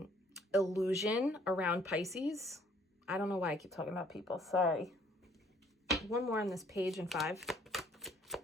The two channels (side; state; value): both; normal; correlation 0.61